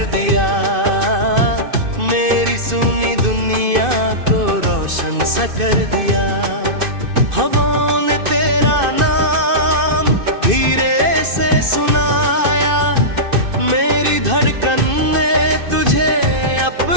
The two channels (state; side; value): late; left; 2.5 ms